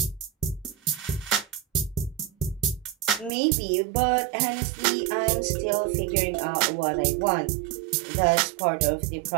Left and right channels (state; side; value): drops out; left; at 3.3 s